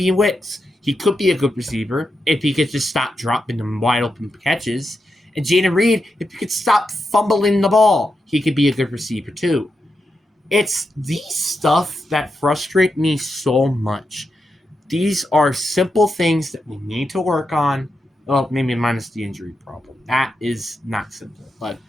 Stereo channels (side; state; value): both; normal; correlation 0.86